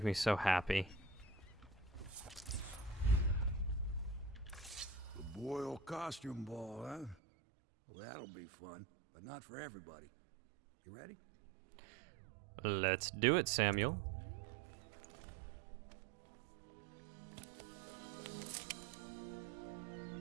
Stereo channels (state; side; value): drops out; left; at 7.2 s